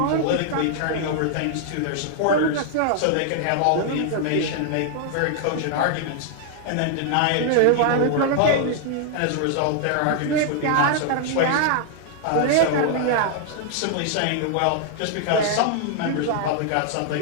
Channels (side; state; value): both; different; correlation -0.01